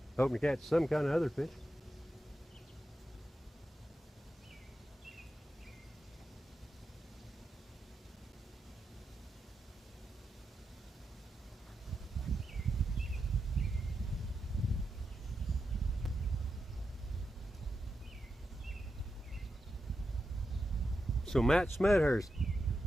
Hoping to catch some kind of other fish. So Matt Smethurst,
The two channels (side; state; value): both; normal; correlation 0.88